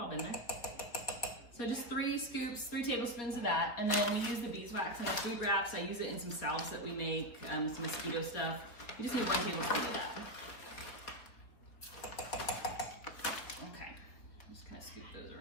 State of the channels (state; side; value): late; right; 4.0 ms